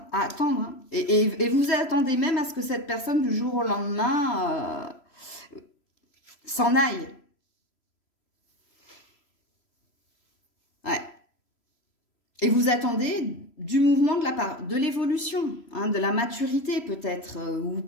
Hein, et vous attendez même à ce que cette personne, du jour au lendemain, s'en aille. Ouais. Et vous attendez du mouvement de la part, de l'évolution, hein, de la maturité peut-être, ou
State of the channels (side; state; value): right; late; 3.0 ms